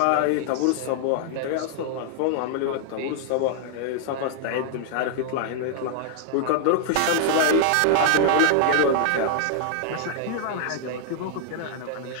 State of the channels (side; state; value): both; different; correlation -0.01